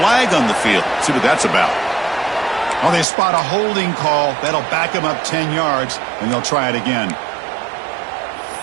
on the field. Let's see what that's about. Well, they spot a holding call. That'll back them up 10 yards, and they'll try it again.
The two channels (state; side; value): drops out; left; at 3.1 s